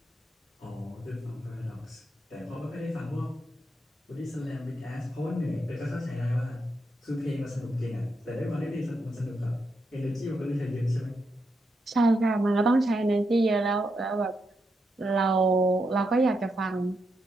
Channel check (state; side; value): normal; both; correlation 0.83